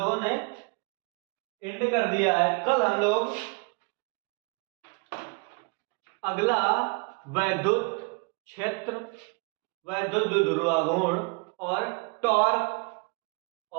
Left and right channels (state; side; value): quieter; left; 32.0 dB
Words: ने एंड कर दिया है। कल हम लोग अगला वैद्युत क्षेत्र, वैद्युत द्विध्रुवाघूर्ण और टॉर्क